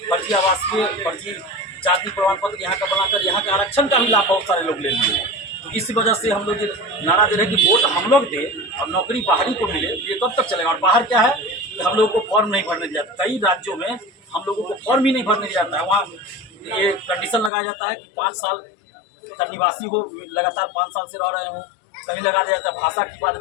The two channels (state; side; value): drops out; right; at 17.5 s